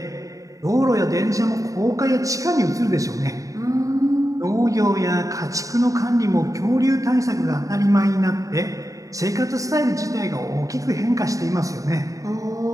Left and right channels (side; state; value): left; late; 0.16 ms